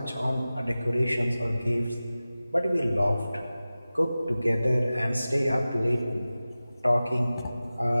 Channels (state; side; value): inverted; both; correlation -0.96